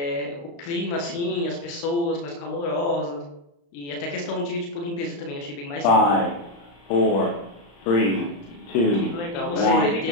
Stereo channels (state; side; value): late; right; 35 ms